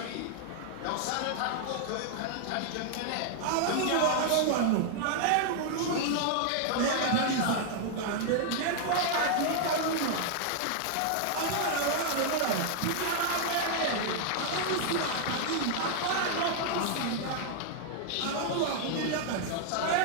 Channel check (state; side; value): different; both; correlation 0.00